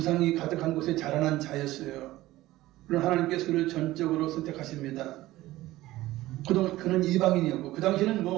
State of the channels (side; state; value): left; quieter; 16.8 dB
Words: 가득한 곳에 자라난 자였어요. 그런 하나님께서 그를 전적으로 선택하십니다. 그동안 그는 이방인이었고 그 당시에는